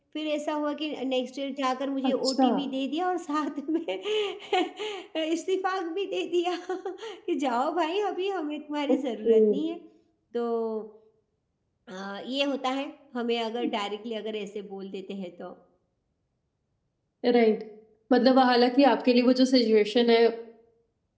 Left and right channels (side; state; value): both; identical; correlation 1.00